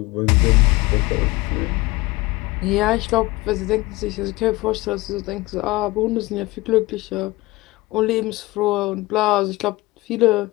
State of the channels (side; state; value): right; quieter; 20.8 dB